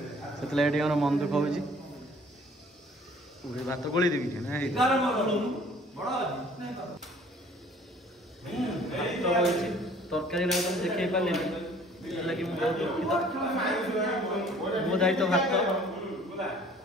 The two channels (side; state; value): both; normal; correlation 0.53